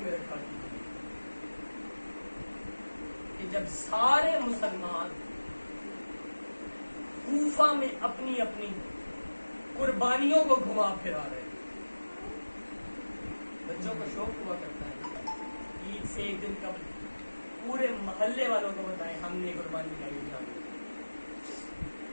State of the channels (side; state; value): both; inverted; correlation -1.00